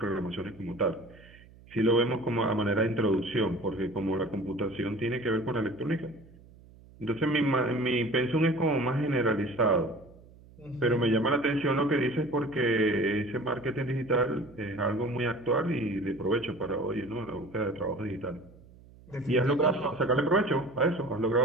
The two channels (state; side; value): noise; right; hum, 23 dB below the sound